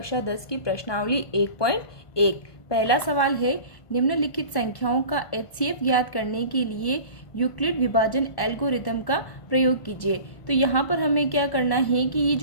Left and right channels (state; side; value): late; right; 1.5 ms